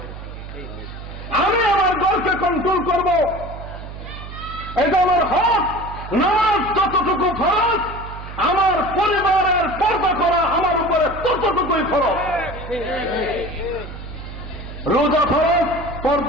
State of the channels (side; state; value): right; noise; hum, 11 dB below the sound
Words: আমি আমার ঘরকে কন্ট্রোল করব, এটা আমার হক। নামাজ যতটুকু ফরজ, আমার পরিবারের পর্দা করা আমার উপরে ততটুকুই ফরজ। রোজা ফরজ,